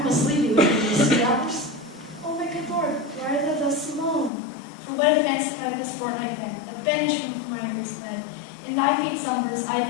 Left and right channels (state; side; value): drops out; right; at 4.3 s